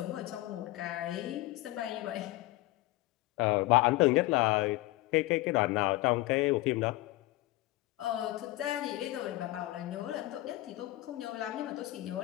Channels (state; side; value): quieter; right; 18.7 dB